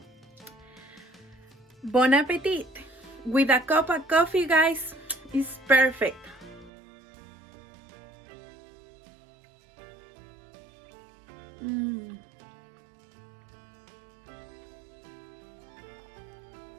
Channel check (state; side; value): drops out; left; at 6.7 s